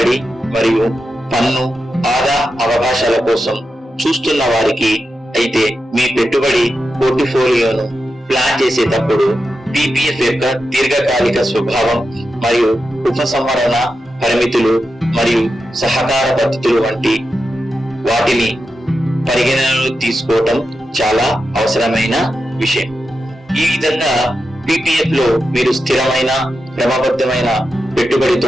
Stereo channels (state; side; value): normal; both; correlation 0.89